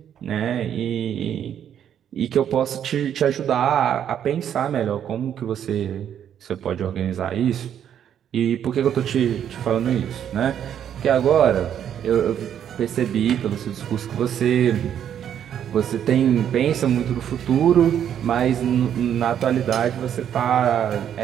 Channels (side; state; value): left; quieter; 9.4 dB